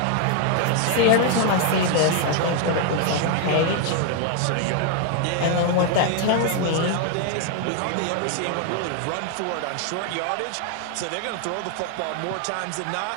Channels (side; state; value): both; different; correlation 0.00